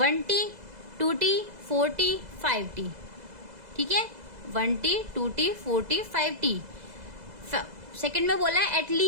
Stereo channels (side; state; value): left; late; 2.0 ms